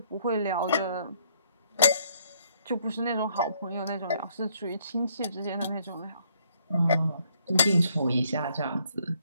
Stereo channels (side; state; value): both; inverted; correlation -0.68